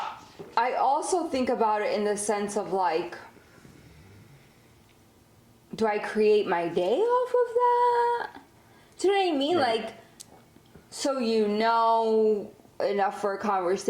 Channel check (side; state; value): both; identical; correlation 1.00